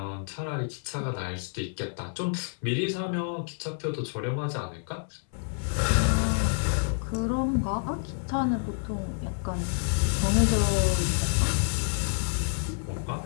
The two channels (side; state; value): right; silent; 59 dB below the other